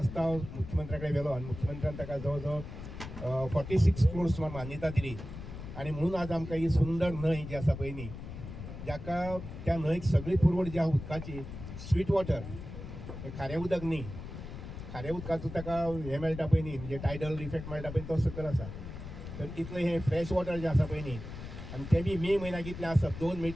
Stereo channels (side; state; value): left; noise; rumble, 10 dB below the sound